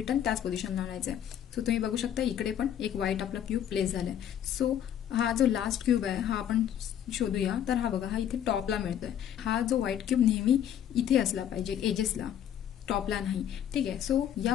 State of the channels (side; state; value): right; quieter; 10.0 dB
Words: त्याच पोझिशनला आणायचं आहे. सो तुम्ही बघू शकता इकडे पण एक व्हाईट आपला क्यूब प्लेस झालाय. सो हा जो लास्ट क्यूब आहे हा आपण शोधूया. तर हा बघा, हा इथे टॉपला मिळतोय. हा जो व्हाईट क्यूब नेहमी इथे असला पाहिजे, एजेसला, टॉपला नाही. ठीक आहे, सो या